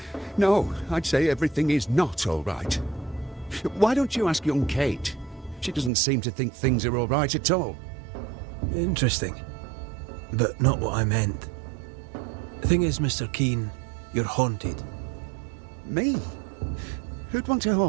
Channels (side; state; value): left; drops out; at 5.9 s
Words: No, I'd say everything is not all right. Why don't you ask young Kate? She doesn't seem to think things are all right at all. Interesting. But not what I meant. The thing is, Mr. Keane, you're haunted. Me? Who'd want to